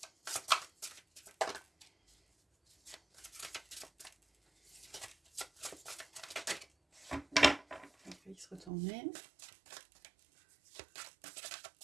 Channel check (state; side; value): drops out; left; at 8.7 s